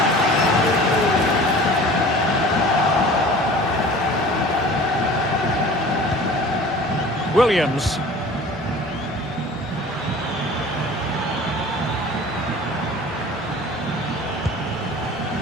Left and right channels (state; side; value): normal; both; correlation 0.43